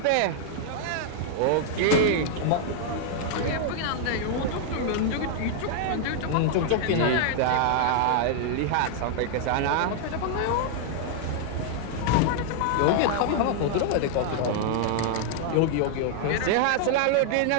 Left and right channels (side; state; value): both; different; correlation 0.00